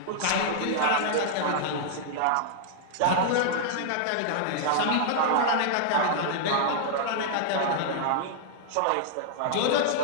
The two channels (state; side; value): different; both; correlation -0.01